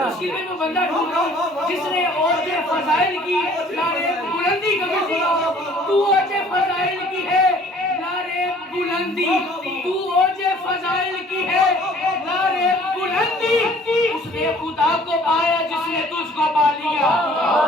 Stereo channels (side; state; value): both; normal; correlation 0.54